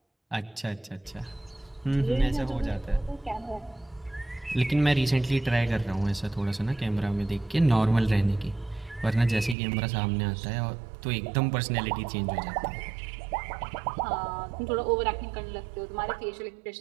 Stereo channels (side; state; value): left; drops out; at 9.6 s